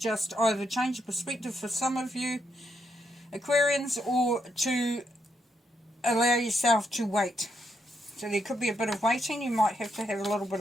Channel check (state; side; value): normal; both; correlation 0.80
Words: either change your perspective for some of you Aquarians, or to allow yourself to wait. So there could be a bit of waiting. You might have to have a little bit